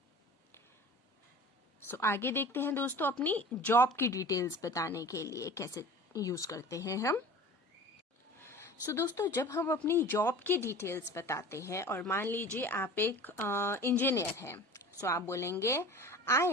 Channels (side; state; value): both; normal; correlation 0.39